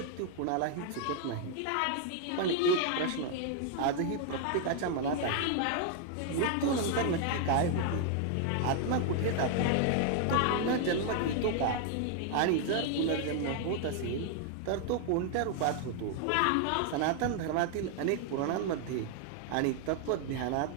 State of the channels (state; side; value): different; both; correlation 0.00